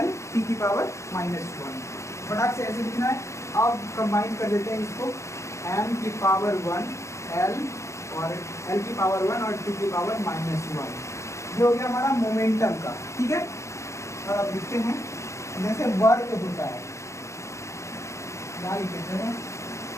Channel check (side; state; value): right; late; 0.14 ms